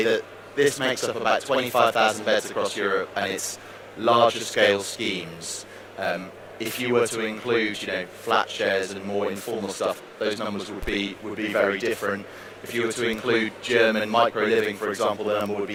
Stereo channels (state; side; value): identical; both; correlation 1.00